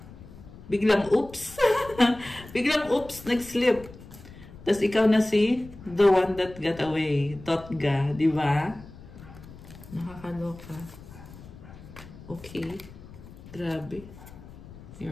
oops. Biglang oops, nag-slip. Tapos ikaw na si the one that got away. Totga, di ba? Nakakaloka. Okay. Grabe.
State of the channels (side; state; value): left; noise; rumble, 17 dB below the sound